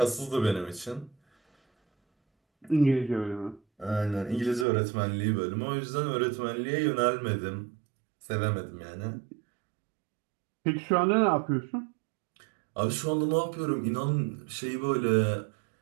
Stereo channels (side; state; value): left; drops out; at 4.7 s